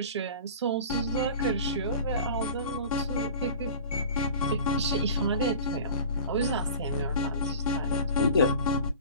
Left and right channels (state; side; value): inverted; both; correlation -0.39